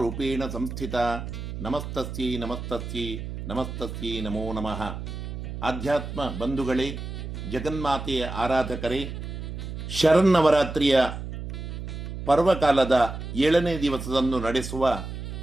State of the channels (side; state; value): right; noise; hum, 7 dB below the sound